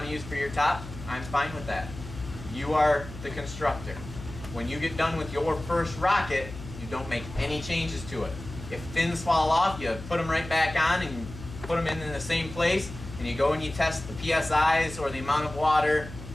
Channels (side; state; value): left; noise; hum, 13 dB below the sound